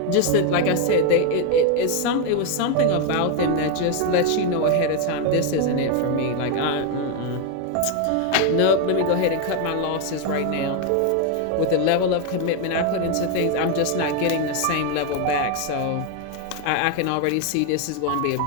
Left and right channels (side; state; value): both; different; correlation 0.01